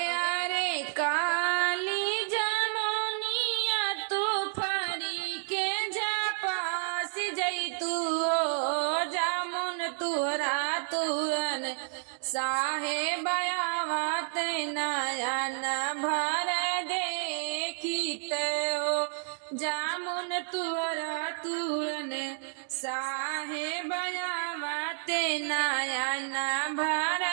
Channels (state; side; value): silent; left; digital silence